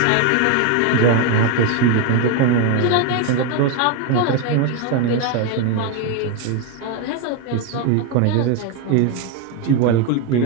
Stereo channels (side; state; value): both; different; correlation 0.02